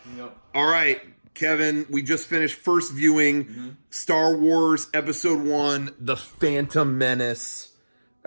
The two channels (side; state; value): both; inverted; correlation -1.00